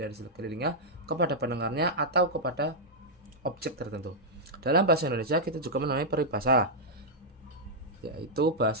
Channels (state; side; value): normal; both; correlation -0.06